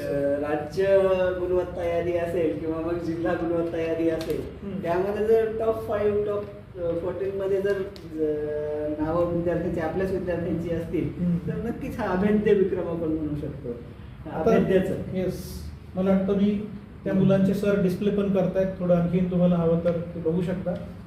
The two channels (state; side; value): identical; both; correlation 1.00